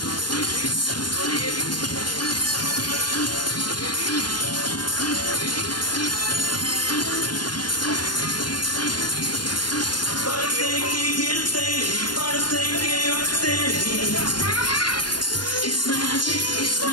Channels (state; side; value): late; right; 0.71 ms